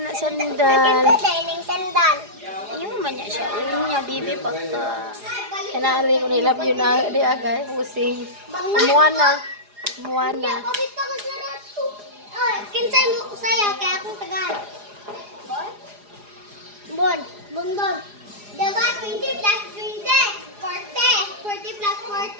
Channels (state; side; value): late; left; 4.9 ms